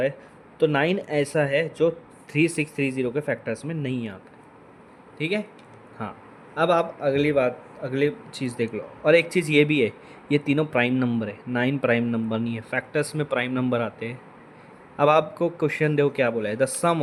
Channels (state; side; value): identical; both; correlation 1.00